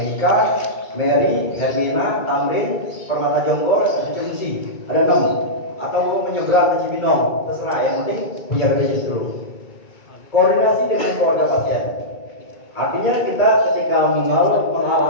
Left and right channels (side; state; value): right; late; 2.3 ms